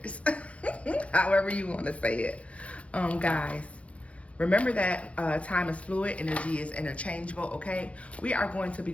However you want to say it. Guys, remember that time is fluid, energy is interchangeable, okay? We are going to be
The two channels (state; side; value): late; right; 0.063 ms